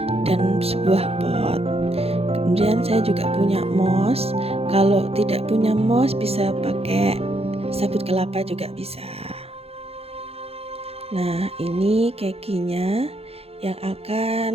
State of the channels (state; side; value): late; left; 0.29 ms